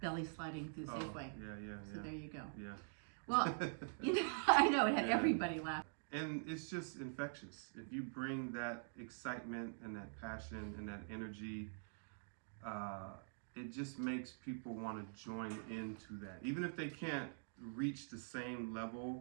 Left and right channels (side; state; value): left; silent; digital silence